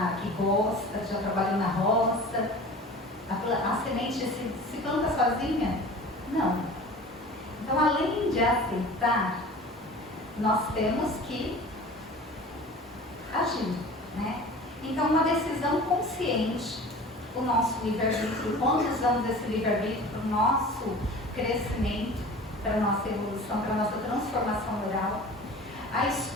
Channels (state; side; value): normal; both; correlation 0.40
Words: que gosta, já trabalhou na roça, a semente se planta sozinha? Não. Então, além de aceitar, nós temos que agir, né? Então, uma decisão consciente, o nosso livre-arbítrio. Quando usamos esse livre-arbítrio para o nosso crescimento, para a nossa evolução, para a nossa transformação moral, a